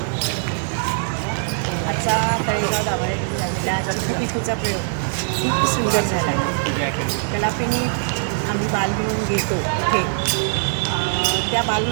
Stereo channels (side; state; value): left; silent; digital silence